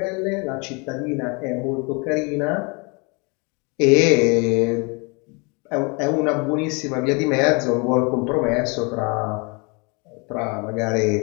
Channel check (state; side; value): quieter; right; 30.9 dB